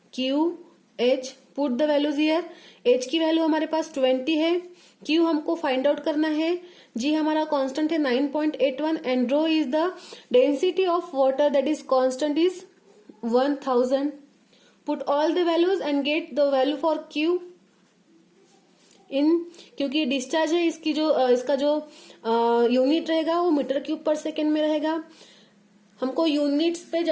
Q H. Put the values here. H की value हमारे पास 20 है, Q हमको find out करना है, G हमारा constant है 9.81 and rho is the density of water, that is constant is 1000. Put all the values and get the value for Q in, क्योंकि discharge है इसकी इसका जो यूनिट रहेगा वो मीटर क्यूब पर सेकेंड में रहेगा। हमको यूनिट्स पे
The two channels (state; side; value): identical; both; correlation 1.00